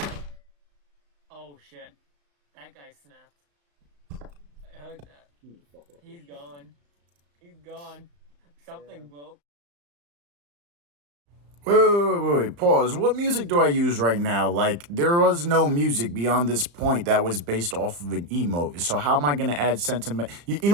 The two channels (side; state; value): left; late; 35 ms